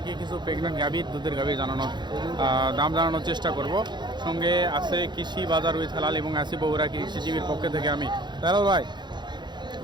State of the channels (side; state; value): left; late; 0.21 ms